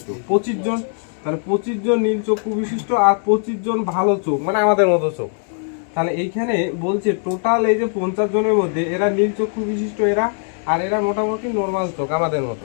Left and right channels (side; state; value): right; silent; 58 dB below the other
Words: 25 জন। তাহলে 25 জন নীল চক্ষু বিশিষ্ট আর 25 জন ভালো চোখ, মানে আমাদের মতো চোখ। তাহলে এইখানে বলছে টোটাল এই যে 50 জনের মধ্যে এরা নীল চক্ষু বিশিষ্ট, এরা আর এরা মোটামুটি নর্মাল চোখ আমাদের মতো।